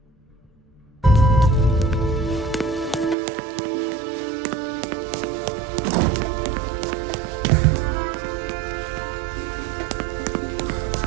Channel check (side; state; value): left; drops out; at 3.2 s